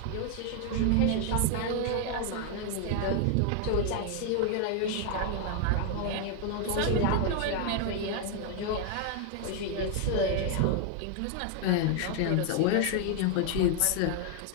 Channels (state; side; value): different; both; correlation 0.00